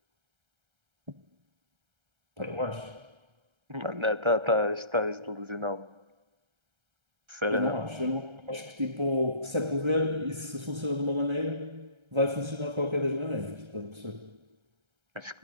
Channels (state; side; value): late; left; 1.3 ms